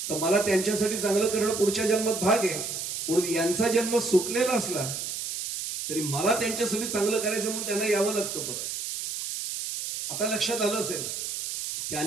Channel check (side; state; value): right; noise; hiss, 5 dB below the sound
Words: तर मला त्यांच्यासाठी चांगलं करणं पुढच्या जन्मात भाग आहे. म्हणून यांचा जन्म सुटलेला असला तरी मला त्यांच्यासाठी चांगलं करायचं म्हणून त्यांना यावं लागतं परत. आता लक्षात आलं असेल,